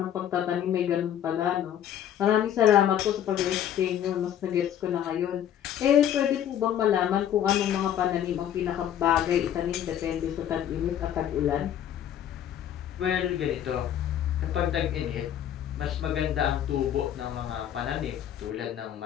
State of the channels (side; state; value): right; quieter; 10.4 dB